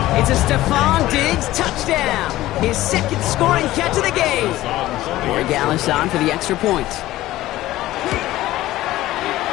It's a Stephon Diggs touchdown. His 2nd scoring catch of the game. Corey Gallis on for the extra point.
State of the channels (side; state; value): right; quieter; 15.9 dB